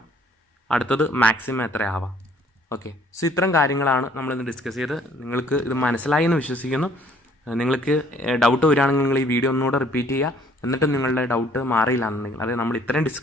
അടുത്തത് മാക്സിമം എത്ര ആവാം. ഓക്കെ, സോ ഇത്തരം കാര്യങ്ങളാണ് നമ്മളിന്ന് ഡിസ്കസ് ചെയ്ത്. നിങ്ങൾക്ക് ഇത് മനസ്സിലായി എന്ന് വിശ്വസിക്കുന്നു. നിങ്ങൾക്ക് ഡൗട്ട് വരികയാണെങ്കിൽ നിങ്ങൾ ഈ വീഡിയോ ഒന്നുകൂടെ റിപ്പീറ്റ് ചെയ്യുക. എന്നിട്ട് നിങ്ങളുടെ ഡൗട്ട് മാറിയില്ല എന്നുണ്ടെങ്കിൽ, അതായത് നമ്മൾ ഇത്രയും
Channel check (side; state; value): both; normal; correlation 0.60